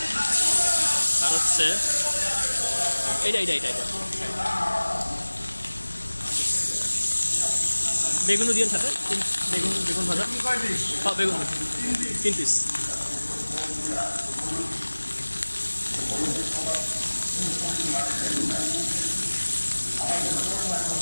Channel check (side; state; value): both; inverted; correlation -1.00